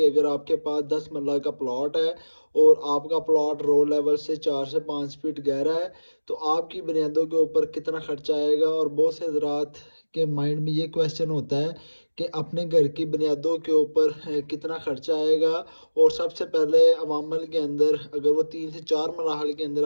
अगर आपके पास 10 मरला का प्लॉट है और आपका प्लॉट रोड लेवल से 4 से 5 फीट गहरा है तो आपकी बुनियादों के ऊपर कितना खर्चा आएगा। और बहुत से हजरात के माइंड में ये क्वेश्चन होता है कि अपने घर की बुनियादों के ऊपर कितना खर्चा आएगा। और सबसे पहले अवामल के अंदर अगर वो 3 से 4 मराहल के अंदर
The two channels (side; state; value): both; inverted; correlation -1.00